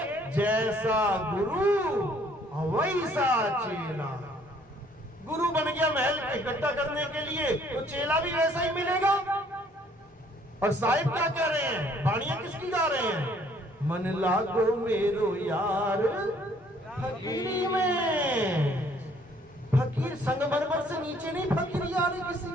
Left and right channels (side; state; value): both; normal; correlation 0.61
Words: जैसा गुरु वैसा चेला। गुरु बन गया महल इकट्ठा करने के लिए, तो चेला भी वैसा ही मिलेगा। और साहिब क्या कह रहे हैं? बाणियां किसकी गा रहे हैं? मन लागो मेरो यार फकीरी में। फकीर संगमरमर से नीचे नहीं फकीरी आ रही किसी